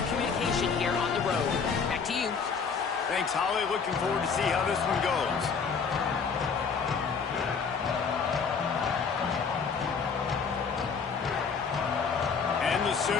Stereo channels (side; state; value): right; quieter; 5.7 dB